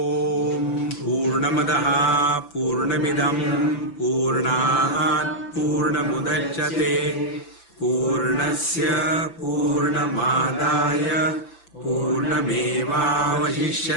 Purnamadaha Purnamidam Purnat Purnamudachyate Purnasya Purnamadaya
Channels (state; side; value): late; right; 5.9 ms